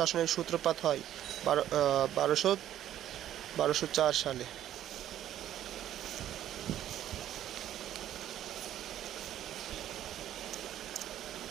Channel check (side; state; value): left; quieter; 11.7 dB